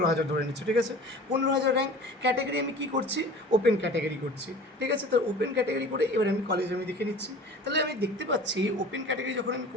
ধরে নিচ্ছি, ঠিক আছে? 15,000 র্যাঙ্ক ক্যাটাগরি আমি কী করছি, ওপেন ক্যাটাগরি করছি, ঠিক আছে? তো ওপেন ক্যাটাগরি করে এবার আমি কলেজ আমি দেখে নিচ্ছি। তাহলে আমি দেখতে পাচ্ছি ওপেন ক্যাটাগরি যখন আমি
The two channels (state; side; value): normal; both; correlation 0.42